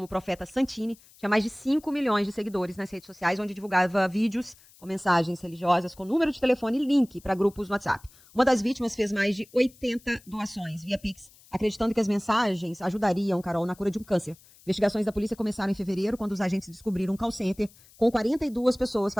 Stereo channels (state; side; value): noise; left; hiss, 26 dB below the sound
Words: Profeta Santini, tinha mais de 5 milhões de seguidores nas redes sociais, onde divulgava vídeos com mensagens religiosas, com número de telefone e link para grupos no WhatsApp. Uma das vítimas fez mais de 80 doações via Pix, acreditando que as mensagens ajudariam, Carol, na cura de um câncer. Investigações da polícia começaram em fevereiro, quando os agentes descobriram um call center com 42 pessoas